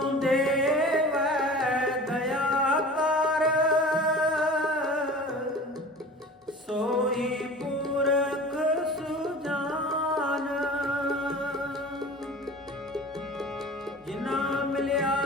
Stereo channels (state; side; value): normal; both; correlation 0.39